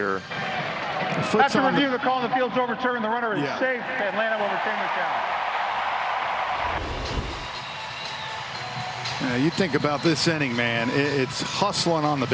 After review, the call in the field's overturned. The runner is safe. Atlanta will retain their challenge. You think about this inning, man. It's hustling on the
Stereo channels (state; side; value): identical; both; correlation 1.00